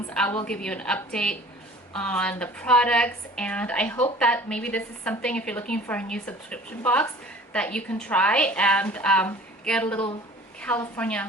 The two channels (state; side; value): normal; both; correlation 0.47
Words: I will give you an update on the products, and I hope that maybe this is something, if you're looking for a new subscription box, that you can try and get a little